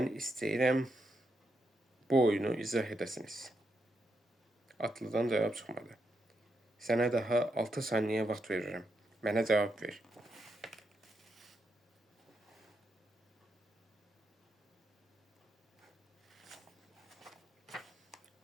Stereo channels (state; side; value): normal; both; correlation 0.82